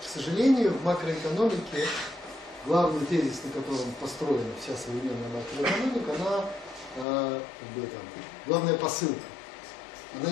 К сожалению, в макроэкономике главный тезис, на котором построена вся современная макроэкономика, она, главная посылка.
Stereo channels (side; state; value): right; drops out; at 7.1 s